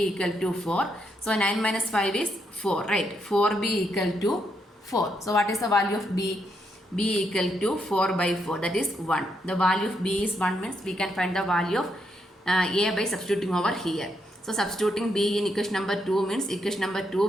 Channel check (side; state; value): both; normal; correlation 0.79